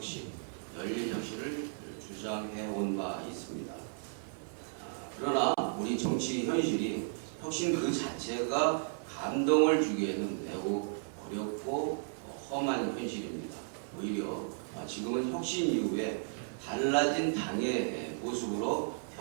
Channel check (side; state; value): left; silent; 55 dB below the other